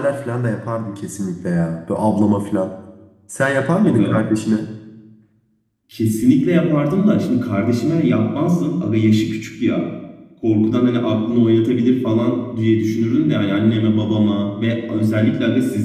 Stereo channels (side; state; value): both; identical; correlation 1.00